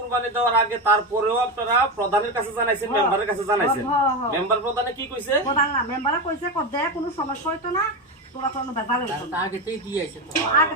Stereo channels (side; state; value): both; normal; correlation 0.16